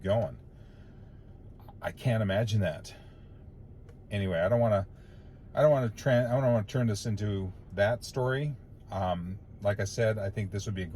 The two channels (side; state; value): both; identical; correlation 1.00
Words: going. I can't imagine that. Anyway, I don't want to turn this into that story. Like I said, I think this would be a